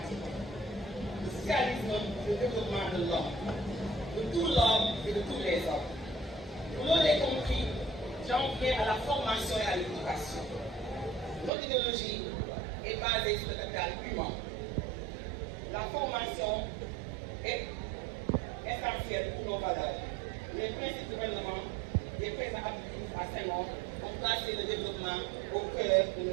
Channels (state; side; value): drops out; left; at 11.5 s